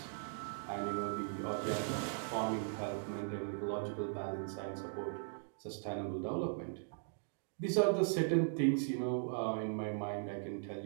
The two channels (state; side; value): silent; left; digital silence